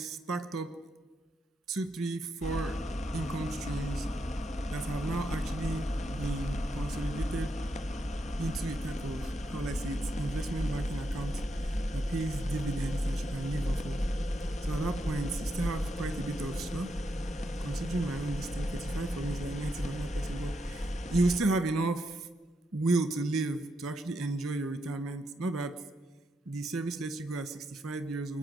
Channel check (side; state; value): both; normal; correlation 0.81